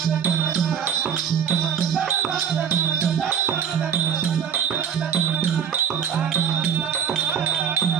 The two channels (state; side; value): quieter; left; 8.0 dB